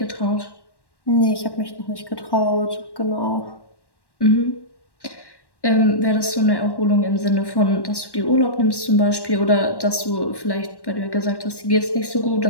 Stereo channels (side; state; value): right; late; 1.1 ms